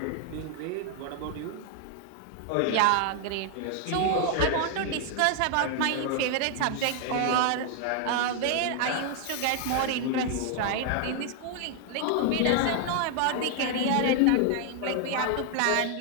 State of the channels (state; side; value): different; both; correlation 0.00